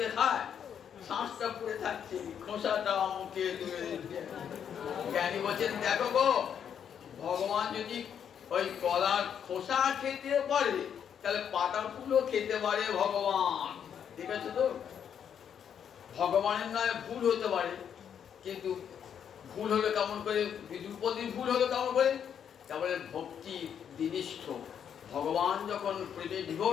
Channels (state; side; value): quieter; right; 8.3 dB